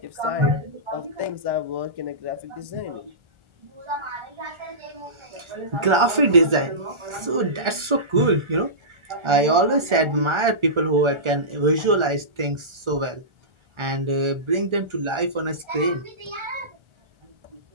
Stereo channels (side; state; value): left; late; 1.4 ms